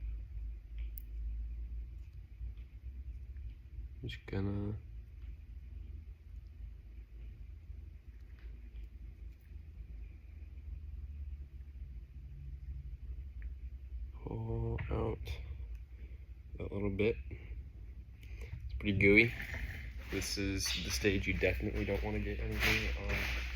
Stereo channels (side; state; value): both; identical; correlation 1.00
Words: I'm just gonna pull out that little bit. It's pretty gooey. This is the stage you definitely don't want to get anything on